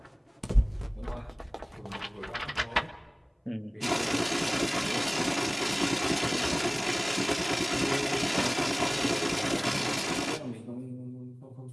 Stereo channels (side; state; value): both; identical; correlation 1.00